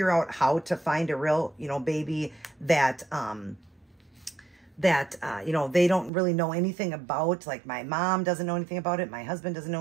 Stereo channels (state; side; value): drops out; left; at 6.1 s